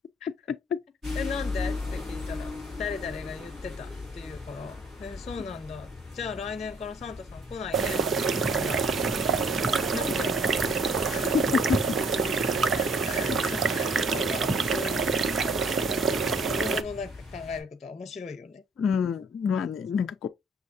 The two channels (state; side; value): normal; both; correlation 0.60